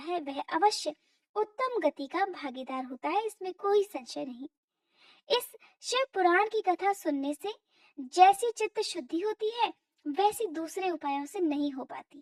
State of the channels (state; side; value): identical; both; correlation 1.00